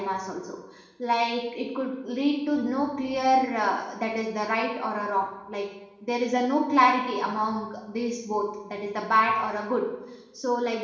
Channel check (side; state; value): both; identical; correlation 1.00